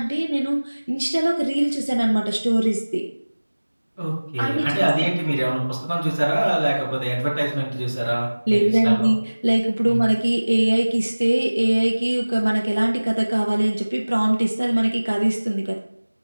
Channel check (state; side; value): inverted; both; correlation -1.00